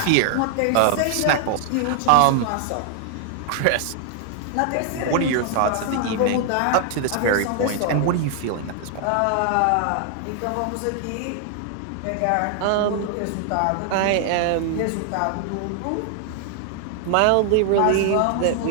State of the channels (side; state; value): both; different; correlation 0.00